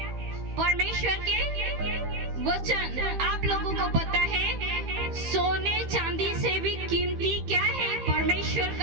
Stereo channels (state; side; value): late; left; 15 ms